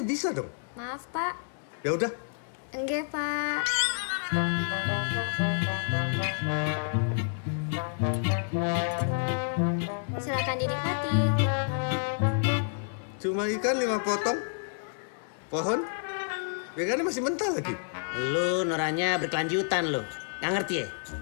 bisa dong. Maaf, Pak. Ya udah. Enggak, Pak. Silakan dinikmati. Cuma ikan 5 potong. Pohon. Ikannya masih mentah lagi. Lu noranya berkelanjutan lu. Nggak ngerti ya?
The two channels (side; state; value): right; silent; 58 dB below the other